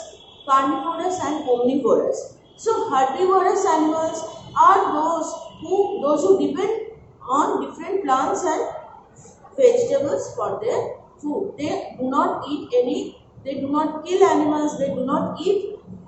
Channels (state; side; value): identical; both; correlation 1.00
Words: carnivorous and omnivorous. So herbivorous animals are those who depend on different plants and vegetables for their food. They do not eat they do not kill animals, they do not eat